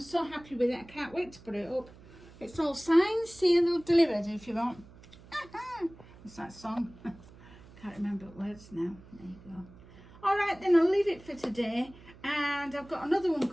so happy with it. I can't wait to put it up. It's all signed, sealed, delivered if you want. It's that song. Can't remember words now. There you go. All right, then I'll leave it for today. And I've got another one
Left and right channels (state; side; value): noise; right; hum, 21 dB below the sound